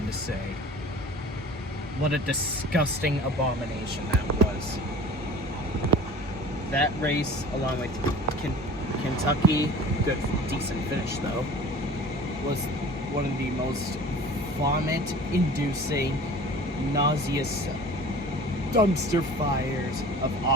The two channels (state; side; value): normal; both; correlation 0.42